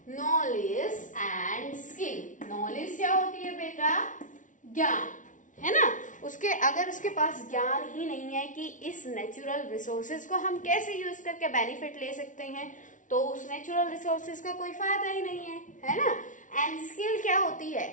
Knowledge and skill. नॉलेज क्या होती है बेटा? ज्ञान, है ना? अगर उसके पास ज्ञान ही नहीं है कि इस नेचुरल रिसोर्सेज को हम कैसे यूज करके बेनिफिट ले सकते हैं, तो उस नेचुरल रिसोर्सेज का कोई फायदा ही नहीं है ना? एंड स्किल क्या होती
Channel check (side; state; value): right; late; 0.37 ms